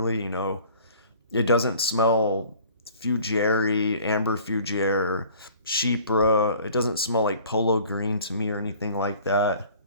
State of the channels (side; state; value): both; inverted; correlation -0.50